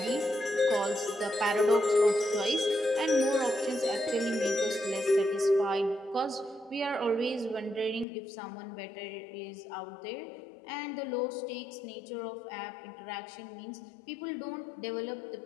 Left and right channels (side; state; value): right; drops out; at 8.1 s